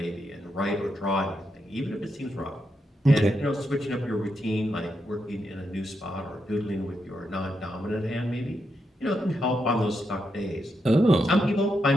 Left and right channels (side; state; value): both; normal; correlation 0.83